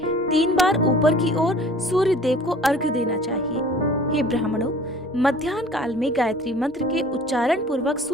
3 बार ऊपर की ओर सूर्य देव को अर्घ्य देना चाहिए। हे ब्राह्मणों, मध्याह्न काल में गायत्री मंत्र के उच्चारण पूर्वक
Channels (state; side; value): normal; both; correlation 0.48